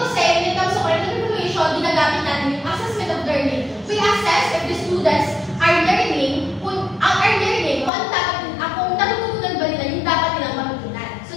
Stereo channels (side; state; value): right; drops out; at 7.9 s